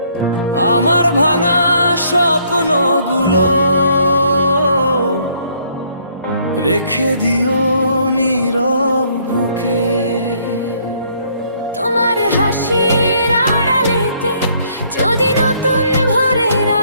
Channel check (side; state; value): both; inverted; correlation -0.66